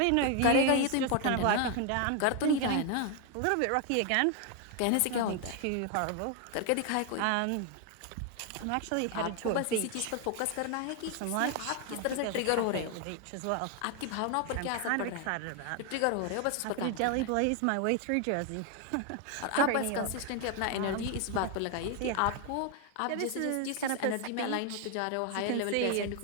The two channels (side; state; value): both; different; correlation 0.01